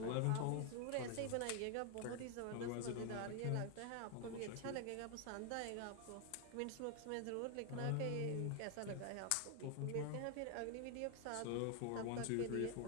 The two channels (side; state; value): both; different; correlation 0.00